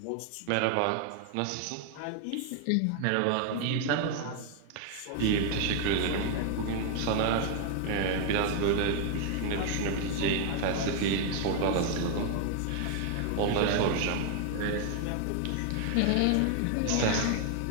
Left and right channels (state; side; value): different; both; correlation 0.00